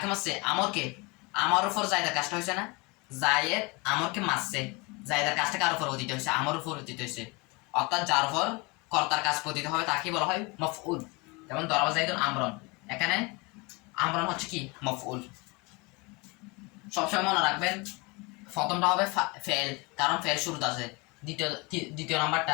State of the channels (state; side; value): quieter; right; 27.1 dB